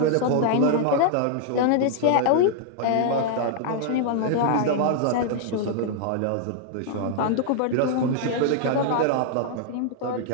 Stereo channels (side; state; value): both; different; correlation -0.01